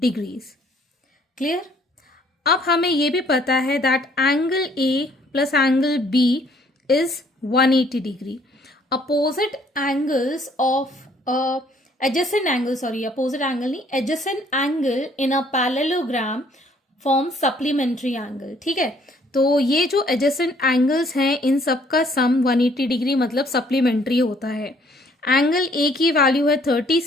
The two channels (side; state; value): both; normal; correlation 0.62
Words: क्लियर? अब हमें ये भी पता है that angle A plus angle B is 180 degree. Opposite angles of adjacent angle, sorry opposite angle नहीं, adjacent angle in a parallelogram form supplementary angle. ठीक है, तो ये जो एडजेसेंट एंगल्स हैं इन सब का सम 180 डिग्री मतलब सप्लीमेंट्री होता है। एंगल ए की वैल्यू है